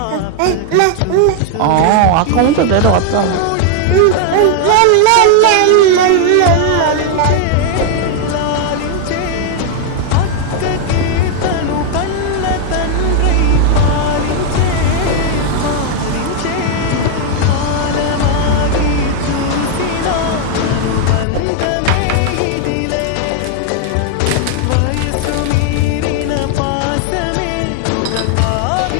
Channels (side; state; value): both; different; correlation 0.00